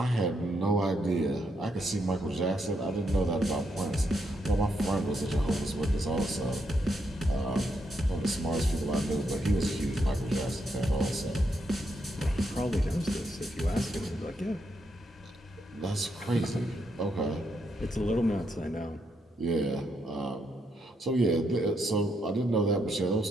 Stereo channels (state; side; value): normal; both; correlation 0.79